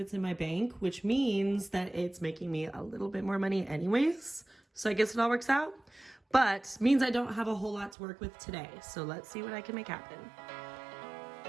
it's in my bank, which means that it's making me a little bit more money anyways. So I guess it all works out, but means I don't have a whole lot to work with today. So let's see what I can make happen.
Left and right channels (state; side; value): drops out; left; at 8.0 s